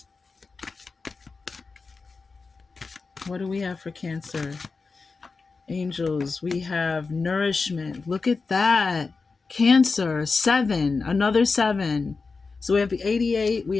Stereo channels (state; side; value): quieter; right; 4.3 dB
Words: what do we have for Cancer? Angels, we have nourishment. Look at that. Cancer, seven, another seven. So we have 88, we